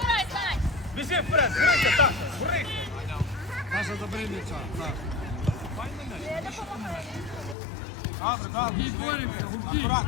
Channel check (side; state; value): right; drops out; at 7.6 s